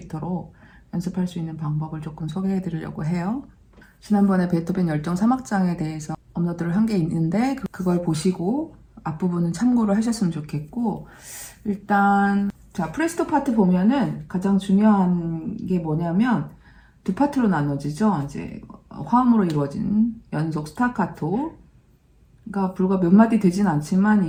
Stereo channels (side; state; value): both; identical; correlation 1.00